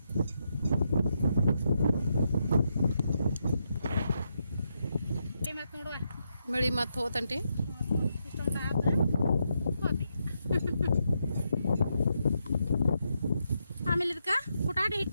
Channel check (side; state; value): both; inverted; correlation -0.81